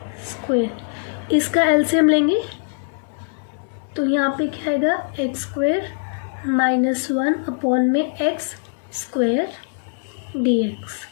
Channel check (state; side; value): silent; right; digital silence